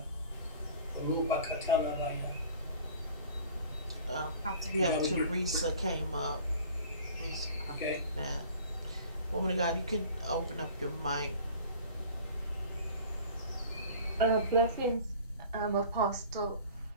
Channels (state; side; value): inverted; both; correlation -0.44